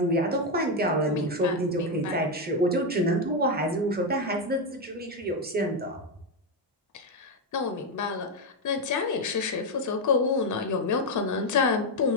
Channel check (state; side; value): normal; both; correlation 0.05